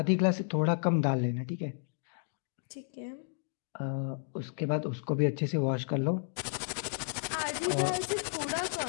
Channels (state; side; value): silent; right; digital silence